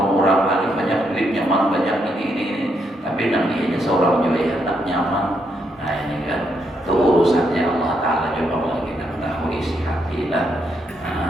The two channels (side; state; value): both; normal; correlation 0.77